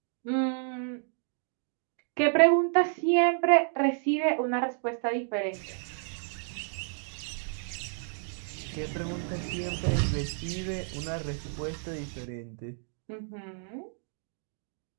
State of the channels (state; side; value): silent; left; digital silence